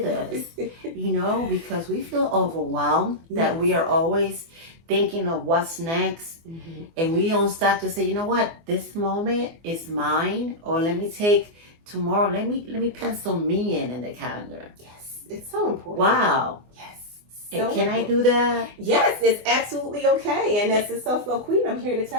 this, because we feel overwhelmed that we are always thinking of what's next, and we don't stop to say, you know what, this moment is mine, or let me take tomorrow, let me pencil me in the calendar. Yes, it's so important. Wow. Yes. So can I do that? Yes, it's absolutely okay. And as a self-love queen, I'm here to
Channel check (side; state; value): left; late; 24 ms